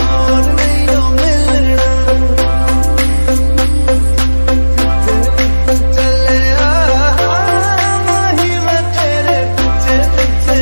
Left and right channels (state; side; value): inverted; both; correlation -1.00